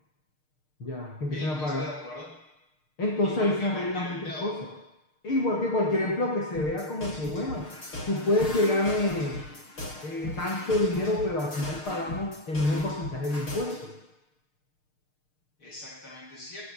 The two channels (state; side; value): late; right; 6.6 ms